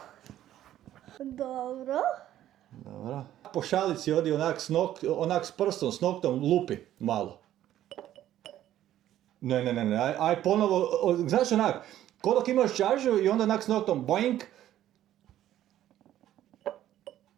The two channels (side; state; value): left; quieter; 12.5 dB